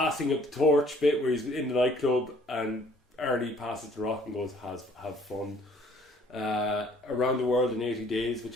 of the torch bit where he's in the nightclub and Arnie passes The Rock and goes, have fun. Around the World in 80 Days, which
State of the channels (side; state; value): both; normal; correlation 0.58